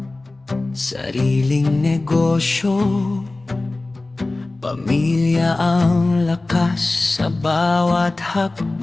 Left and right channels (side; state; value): right; quieter; 3.0 dB